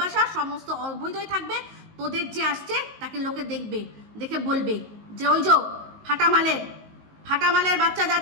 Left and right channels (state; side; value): late; left; 19 ms